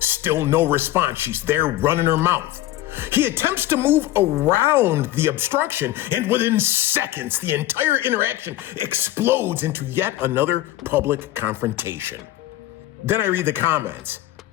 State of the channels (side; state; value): right; quieter; 14.8 dB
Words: Still no response. She's there running her mouth. He attempts to move around the obstruction, and within seconds, the entire interaction explodes into yet another public confrontation. Then I read the comments.